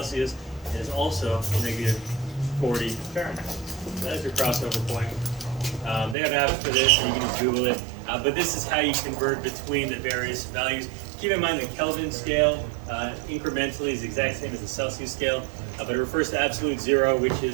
It is also negative 40 Fahrenheit. That's your crossover point. They have apps for this, and you can just Google it. But this is how you convert between the various values. Keep in mind the Kelvin scale incrementally is the exact same as the Celsius scale, but it refers to absolute 0, which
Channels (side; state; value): left; drops out; at 6.2 s